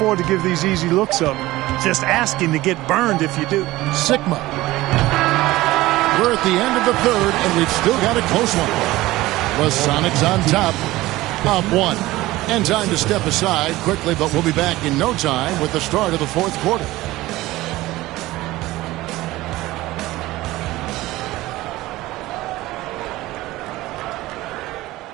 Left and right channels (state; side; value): quieter; left; 17.9 dB